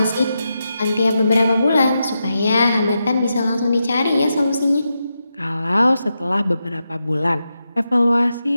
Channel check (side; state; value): both; inverted; correlation -0.87